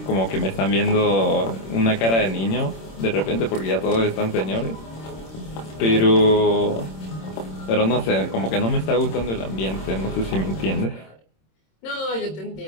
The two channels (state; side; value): late; right; 26 ms